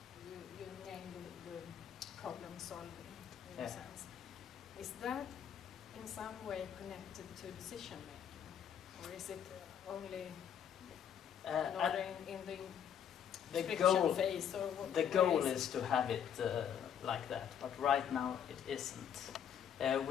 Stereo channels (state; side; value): quieter; right; 8.7 dB